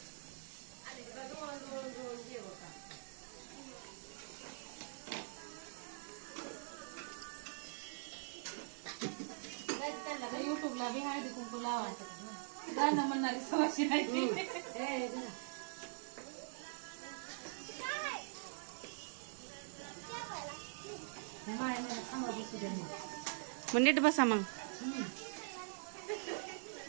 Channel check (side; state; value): left; silent; digital silence